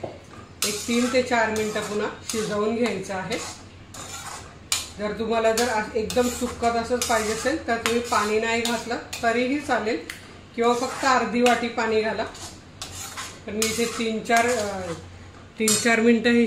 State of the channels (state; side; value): identical; both; correlation 1.00